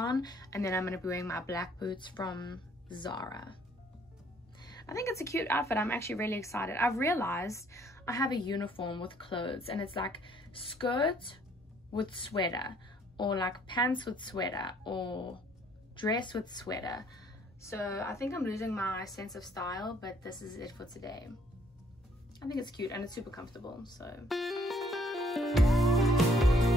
and then I'm going to be wearing my black boots from Zara. I think it's a cute outfit. I'm actually really excited. I've realized I have a uniform with clothes, and it's like skirt with sweater, or like pants with sweater, or dress with sweater. So I think I'm losing my sense of style, but this is it for today. I think it's cute and it's super comfortable, so.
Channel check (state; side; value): normal; both; correlation 0.63